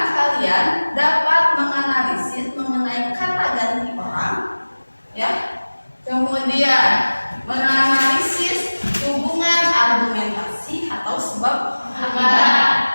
kalian dapat menganalisis mengenai kata ganti orang, ya. Kemudian menganalisis hubungan argumentasi atau sebab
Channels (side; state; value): both; inverted; correlation -1.00